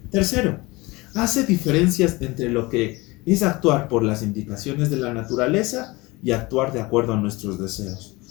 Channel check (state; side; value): quieter; right; 22.8 dB